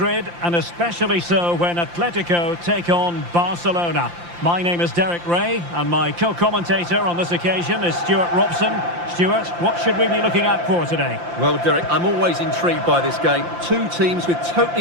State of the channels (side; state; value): left; late; 5.8 ms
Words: and especially so when Atletico take on Barcelona. My name is Derek Ray, and my co-commentator on this occasion is Stuart Robson. Stuart, what should we be looking out for today? Well, Derek, I'm always intrigued by this game. Two teams with